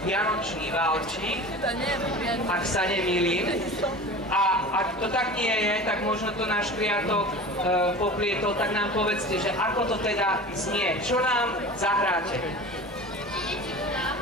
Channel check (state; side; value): normal; both; correlation 0.36